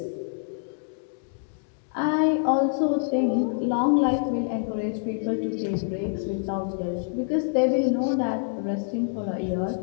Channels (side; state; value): right; silent; digital silence